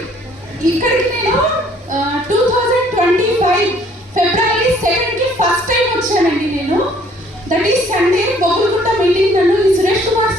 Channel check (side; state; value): both; normal; correlation 0.60